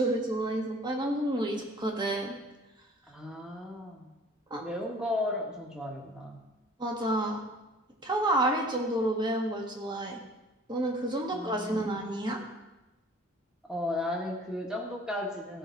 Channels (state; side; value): normal; both; correlation 0.50